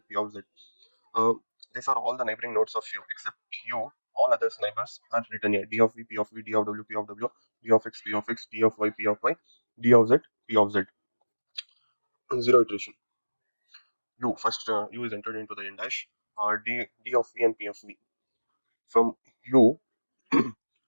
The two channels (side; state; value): both; inverted; correlation -1.00